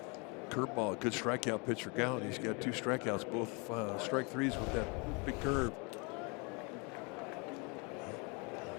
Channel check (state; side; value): quieter; right; 31.4 dB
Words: Curveball, a good strikeout pitch for Gallen. He's got 2 strikeouts, both strike threes with that big curve.